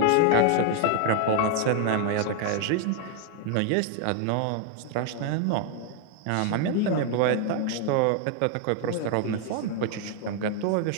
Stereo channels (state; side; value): different; both; correlation 0.00